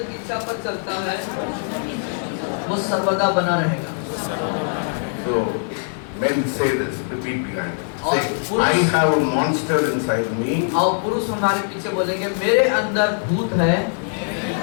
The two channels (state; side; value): silent; right; digital silence